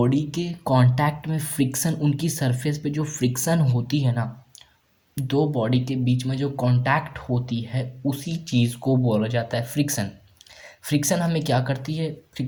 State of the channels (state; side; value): identical; both; correlation 1.00